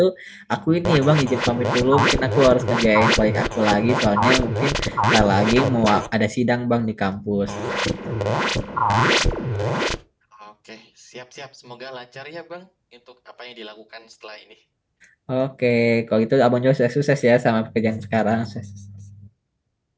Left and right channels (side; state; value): both; identical; correlation 1.00